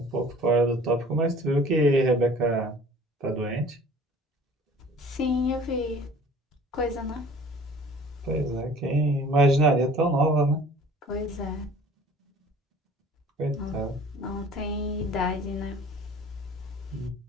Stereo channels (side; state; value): both; normal; correlation 0.49